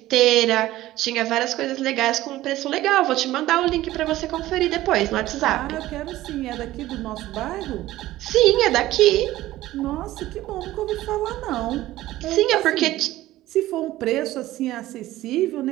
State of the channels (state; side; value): quieter; left; 15.8 dB